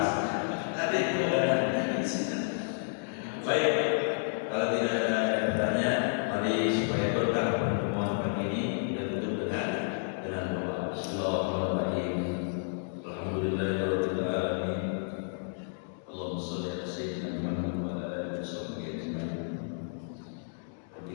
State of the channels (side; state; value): right; silent; digital silence